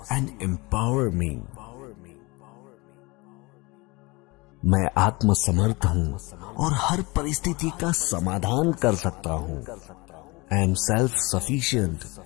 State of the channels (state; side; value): quieter; right; 24.8 dB